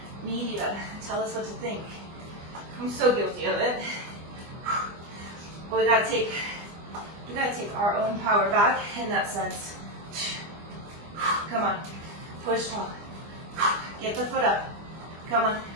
media, tell us what to think? I'm so guilty of it. But we gotta take our own power back in that sense. Come on, push tall. Get the foot up. Come on,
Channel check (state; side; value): late; left; 25 ms